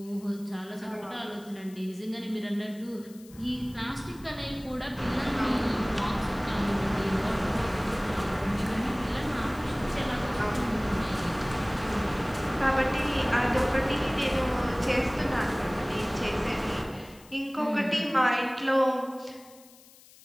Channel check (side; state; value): left; noise; hiss, 23 dB below the sound